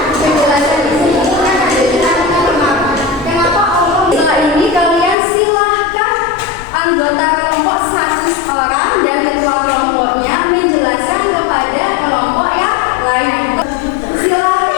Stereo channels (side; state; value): right; drops out; at 5.2 s